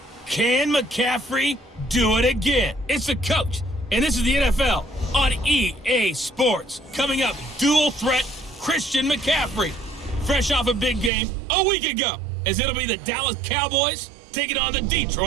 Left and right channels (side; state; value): left; drops out; at 11.1 s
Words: Can McCaffrey do it again? It's the coach, and this is the NFL on EA Sports. Coming up, dual threat Christian McCaffrey. Fresh off a big game a week ago, as it'll be the Dallas Cowboys taking on the